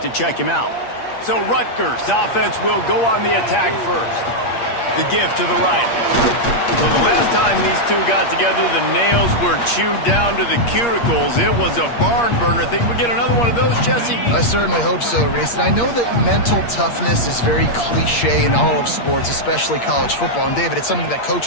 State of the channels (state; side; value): late; right; 8.5 ms